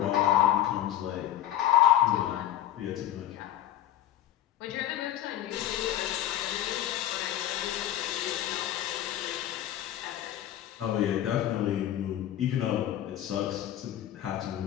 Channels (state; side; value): quieter; right; 12.0 dB